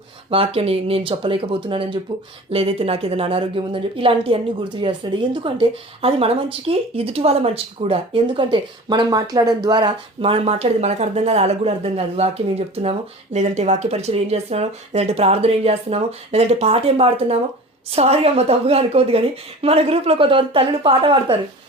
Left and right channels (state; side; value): normal; both; correlation 0.38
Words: వాక్యం నేను చెప్పలేకపోతున్నానని చెప్పు, లేదైతే నాకు ఏదైనా అనారోగ్యం ఉందని చెప్పి, ఇలాంటివన్నీ గుర్తు చేస్తాడు. ఎందుకంటే అది మన మంచికి, ఎదుటి వాళ్ళ మంచికి కూడా. ఎందుకంటే మనం మాట్లాడడం ద్వారా, మనం మాట్లాడేది మనకు అర్థం కాదు, వాళ్ళకు కూడా అర్థం కాదు. వాక్యం ఏం చెప్తున్నామో, లేదంటే వాక్య పరిచయం ఏం చేస్తున్నామో, లేదంటే ప్రార్థన ఏం చేస్తున్నామో, లేదంటే పాట ఏం పాడుతున్నామో. సారీ అమ్మ, తప్పుగా అనుకోవద్దు, కానీ మన గ్రూప్లో కొంతమంది తల్లులు పాట పాడతారు,